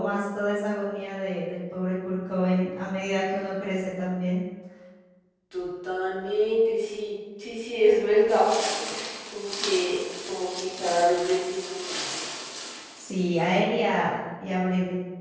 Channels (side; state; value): both; identical; correlation 1.00